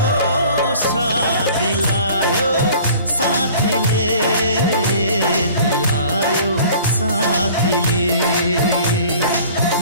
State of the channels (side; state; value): both; inverted; correlation -0.48